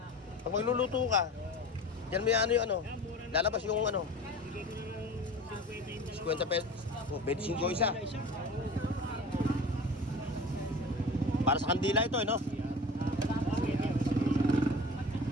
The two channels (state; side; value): normal; both; correlation 0.37